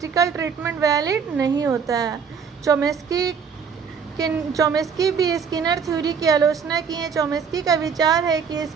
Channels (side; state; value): left; quieter; 6.4 dB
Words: ट्रीटमेंट वैलिड नहीं होता है। चोमेस्की भी स्किनर थ्योरी की आलोचना की है। चोमेस्की का विचार है कि